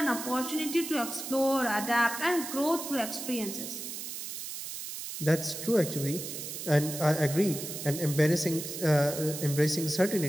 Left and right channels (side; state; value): right; noise; hiss, 7 dB below the sound